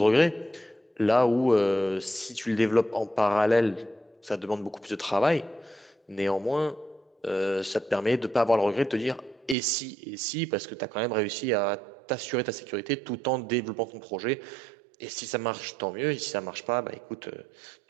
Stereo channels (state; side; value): drops out; left; at 9.6 s